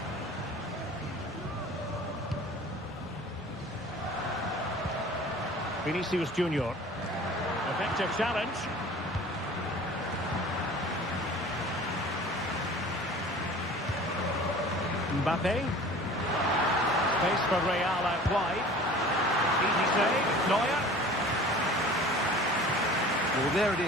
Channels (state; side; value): normal; both; correlation 0.44